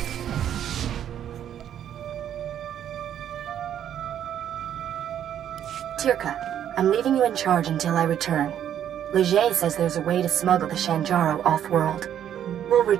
Tirka, I'm leaving you in charge until I return. Leger says there's a way to smuggle the Shanjaru off-world. We'll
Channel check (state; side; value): quieter; left; 10.1 dB